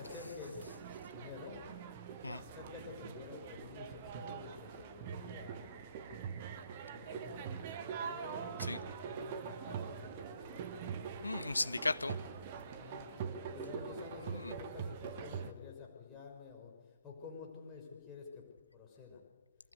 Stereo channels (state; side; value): inverted; both; correlation -0.64